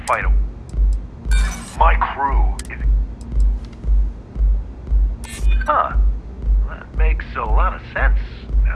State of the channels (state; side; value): identical; both; correlation 1.00